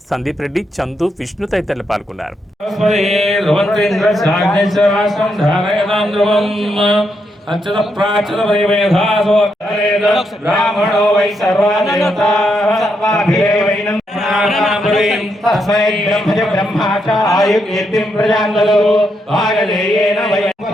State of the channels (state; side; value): normal; both; correlation 0.80